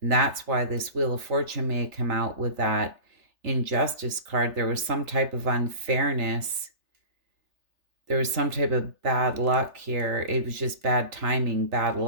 that's why this Wheel of Fortune may have come out with that injustice card. There was some type of unfairness. There was some type of bad luck here. It was just bad timing, bad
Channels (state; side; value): late; left; 3.4 ms